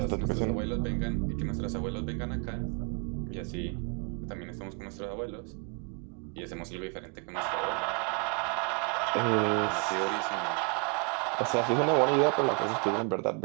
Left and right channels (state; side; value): quieter; left; 36.7 dB